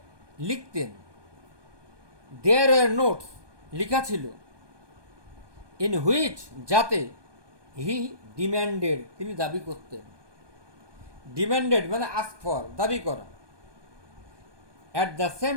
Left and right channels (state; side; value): late; left; 1.2 ms